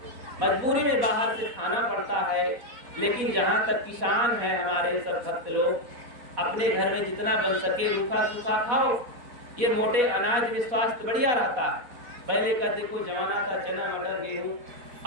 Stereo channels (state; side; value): late; left; 4.1 ms